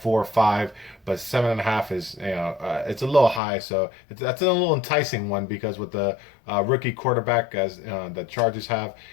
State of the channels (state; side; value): drops out; right; at 3.4 s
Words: or 5, but 7.5 is it's a little high. So that's a little enticing one, because with the rookie quarterback as the Chargers have,